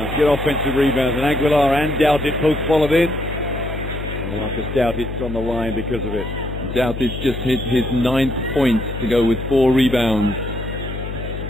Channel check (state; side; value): noise; left; hum, 7 dB below the sound